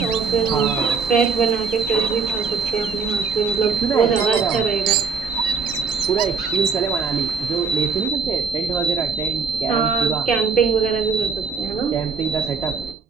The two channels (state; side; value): quieter; left; 5.4 dB